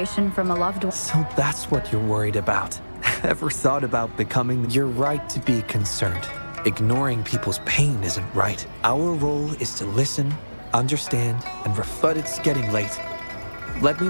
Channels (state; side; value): inverted; both; correlation -1.00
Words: from a loved one. So that's what you're worried about. Ever thought about becoming? You're right to be concerned. Ignoring people's pain isn't right. Our role is to listen, understand, and but it's getting late. Let me